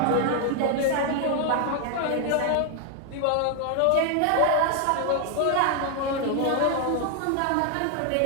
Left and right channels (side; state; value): both; different; correlation 0.00